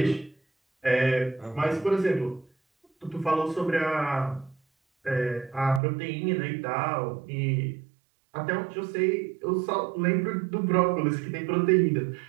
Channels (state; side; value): drops out; left; at 5.8 s